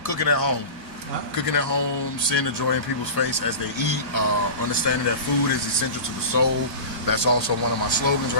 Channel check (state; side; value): late; left; 1.6 ms